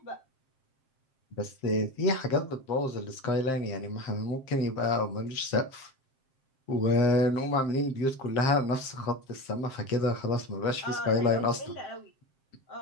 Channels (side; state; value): right; late; 7.5 ms